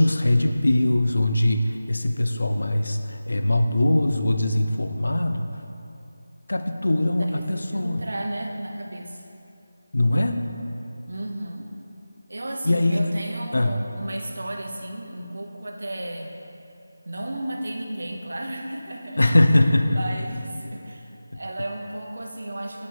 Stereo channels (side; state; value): both; inverted; correlation -0.97